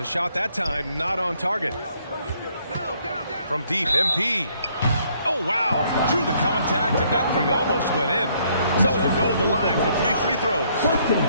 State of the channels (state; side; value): inverted; both; correlation -0.67